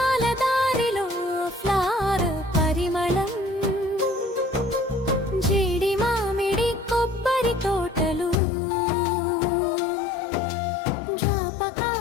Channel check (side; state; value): right; drops out; at 8.4 s